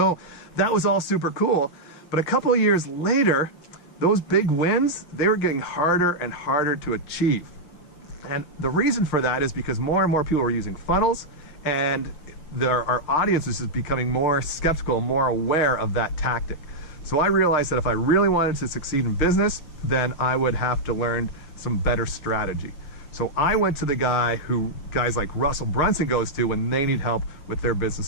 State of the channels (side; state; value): right; late; 6.4 ms